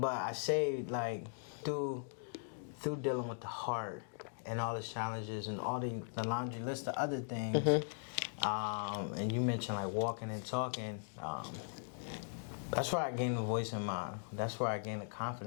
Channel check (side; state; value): right; silent; digital silence